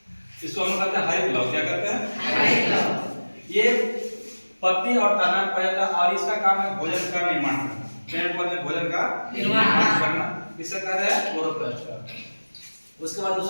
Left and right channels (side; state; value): both; inverted; correlation -1.00